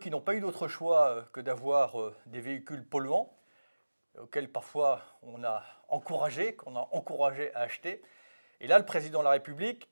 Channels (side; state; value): both; inverted; correlation -1.00